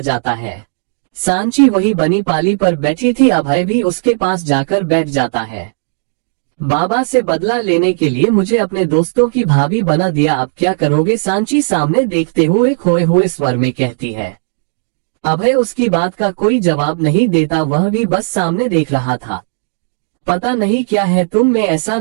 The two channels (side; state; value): left; silent; digital silence